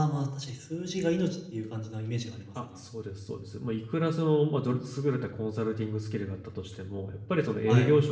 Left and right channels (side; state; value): both; identical; correlation 1.00